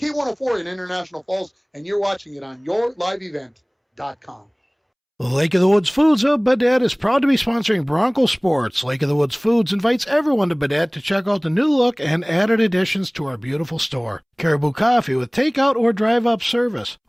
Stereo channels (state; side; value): identical; both; correlation 1.00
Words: in International Falls, and you're watching it on yourliveevent.com. Lake of the Woods Foods of Baudette is proud to be sponsoring Bronco Sports. Lake of the Woods Foods invites everyone to Baudette to check out the new look and added additions to our beautiful store. Caribou Coffee with takeout or drive-up service.